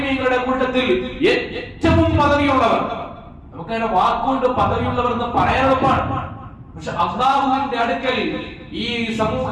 കൂട്ടത്തിൽ ഏറ്റവും പദവിയുള്ളവർ. നമുക്കതിനെ വാക്കുകൊണ്ട് പദവിയുള്ളവർ എന്ന് പറയാൻ എളുപ്പമാണ്. പക്ഷെ അല്ലാഹുവിന്റെ അടുക്കൽ ഈ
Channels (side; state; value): both; identical; correlation 1.00